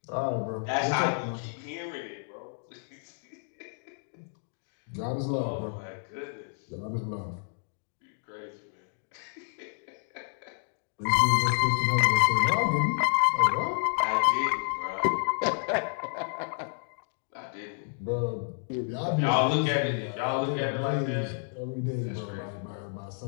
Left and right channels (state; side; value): silent; right; digital silence